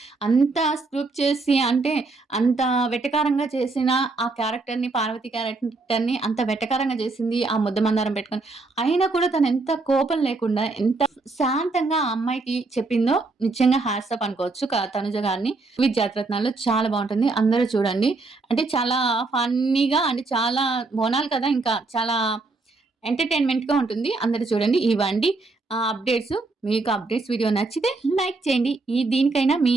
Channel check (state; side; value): quieter; left; 3.6 dB